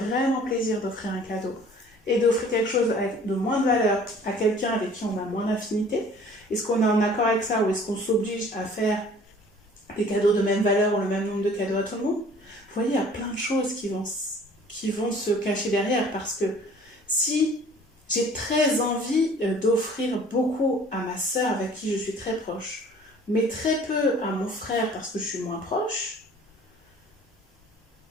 plaisir d'offrir un cadeau et d'offrir quelque chose de moins de valeur à quelqu'un avec qui on a moins d'affinité? Est-ce qu'on est en accord avec ça ou est-ce qu'on s'oblige à faire des cadeaux de même valeur ou le même nombre de cadeaux à tout le monde? Vous voyez, il y a plein de choses qui vont se cacher derrière parce que si j'ai très envie d'offrir beaucoup à ma sœur avec qui je suis très proche, mais très peu à mon frère parce que je suis moins proche,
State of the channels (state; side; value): normal; both; correlation 0.51